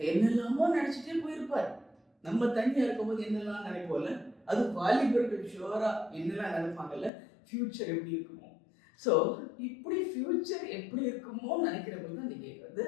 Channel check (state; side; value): drops out; right; at 7.1 s